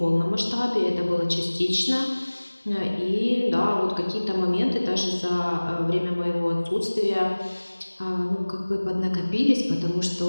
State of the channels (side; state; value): both; inverted; correlation -1.00